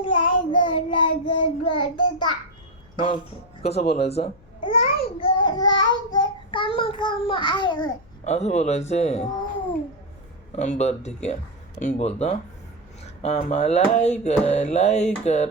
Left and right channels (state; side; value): noise; left; hum, 28 dB below the sound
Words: मग कसं बोलायचं? असं बोलायचंय. बरं ठीक आहे, मी बोलतो. आम्हा लाईक